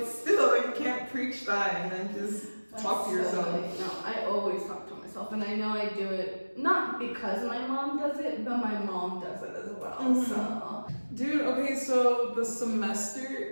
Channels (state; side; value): inverted; both; correlation -1.00